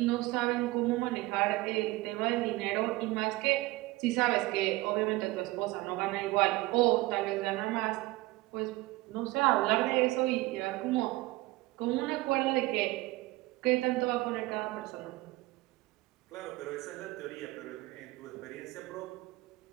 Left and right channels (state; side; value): quieter; left; 20.0 dB